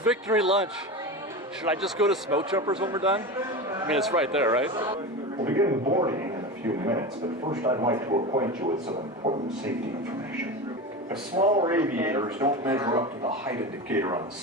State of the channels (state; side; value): normal; both; correlation 0.25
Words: lunch. Should I just go to Smoke Jumpers when we're done? I mean, it's right there, right? We'll begin boarding in a few minutes, but first I'd like to acquaint you with some important safety information. The smaller aviators don't measure up to the height indicator on the